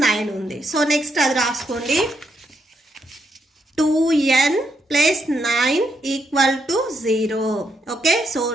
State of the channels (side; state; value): both; normal; correlation 0.79